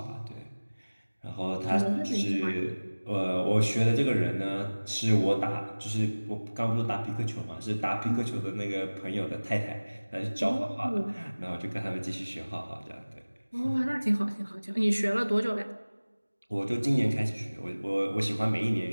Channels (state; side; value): inverted; both; correlation -1.00